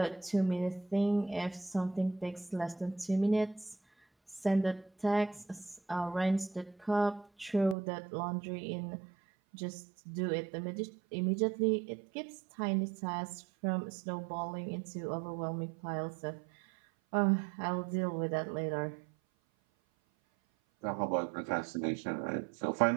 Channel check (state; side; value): drops out; left; at 7.8 s